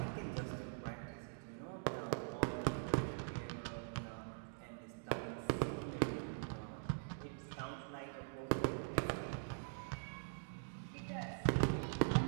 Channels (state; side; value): silent; left; digital silence